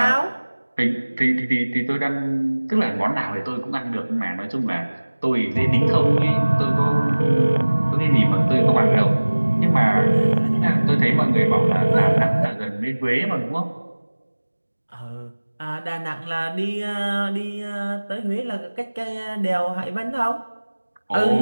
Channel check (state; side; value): inverted; both; correlation -1.00